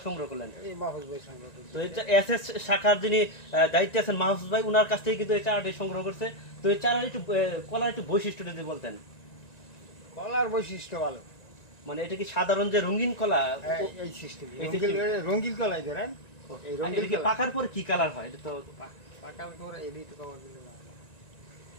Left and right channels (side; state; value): right; late; 1.9 ms